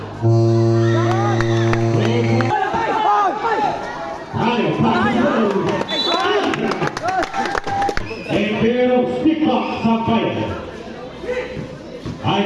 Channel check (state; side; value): identical; both; correlation 1.00